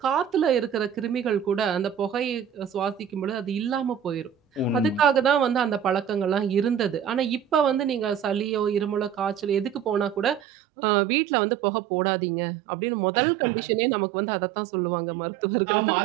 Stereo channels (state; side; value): drops out; left; at 10.4 s